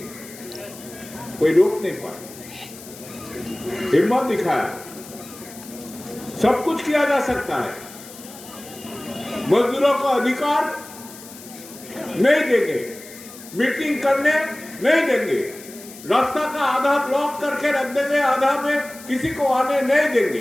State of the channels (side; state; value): left; noise; hiss, 17 dB below the sound